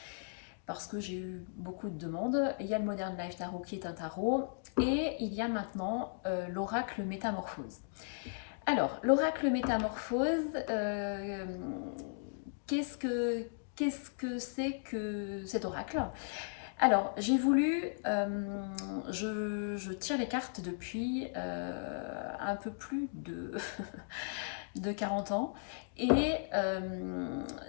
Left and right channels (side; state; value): right; silent; digital silence